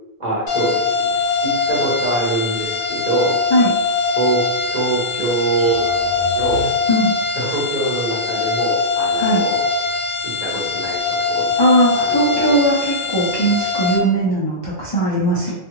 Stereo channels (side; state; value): both; normal; correlation -0.17